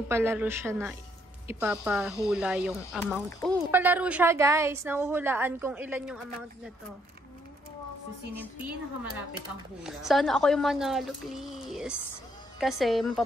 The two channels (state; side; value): normal; both; correlation 0.71